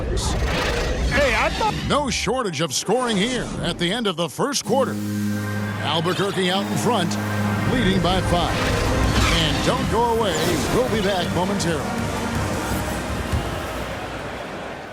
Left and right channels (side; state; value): both; identical; correlation 1.00